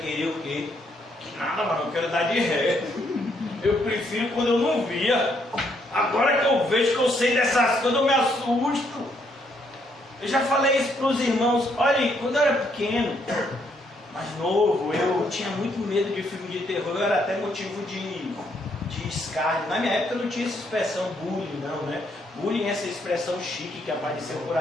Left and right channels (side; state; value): both; normal; correlation 0.72